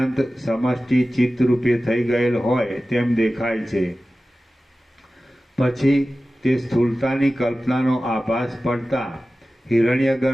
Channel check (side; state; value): both; normal; correlation 0.95